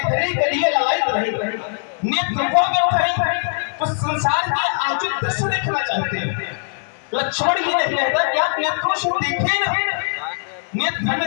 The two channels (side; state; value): right; silent; digital silence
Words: के लिए ललायित रहे। नेत्र वो व्यर्थ है जो संसार के अनुचित दृश्य देखना चाहते हैं। लक्ष्मण ही नहीं कहता कि आप नेत्रों से देखें ना, नेत्र